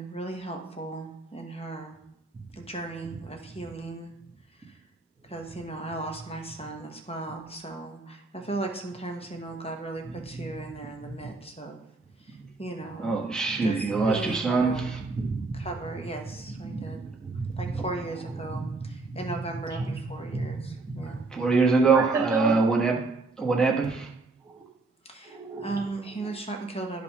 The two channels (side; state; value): left; quieter; 3.6 dB